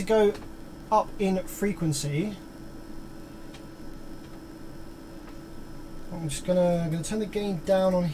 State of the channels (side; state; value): both; identical; correlation 1.00